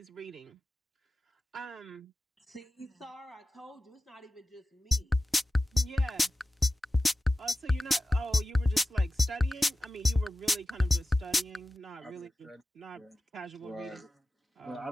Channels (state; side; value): normal; both; correlation 0.95